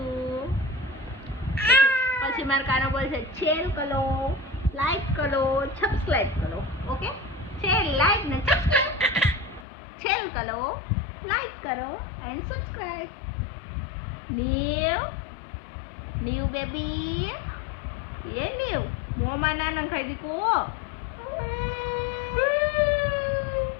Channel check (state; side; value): drops out; right; at 9.7 s